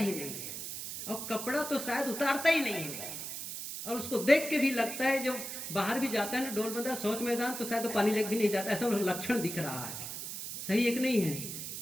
नहीं है, और कपड़ा तो शायद उतारता ही नहीं है, और उसको देख के भी लगता है, जो बाहर भी जाता है ना, डोल बंदा, शौच मैदान, तो शायद तो पानी लेके भी नहीं जाता, ऐसा लक्षण दिख रहा है। सही एक नहीं है?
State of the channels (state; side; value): noise; right; hiss, 7 dB below the sound